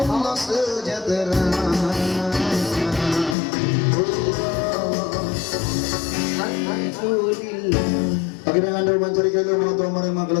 Allah sejahtera. Akin ang ando mencari kayo mga tuwa maring mga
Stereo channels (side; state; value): right; drops out; at 3.4 s